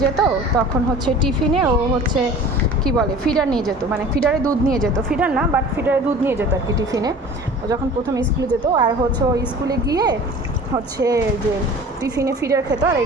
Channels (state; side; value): normal; both; correlation 0.43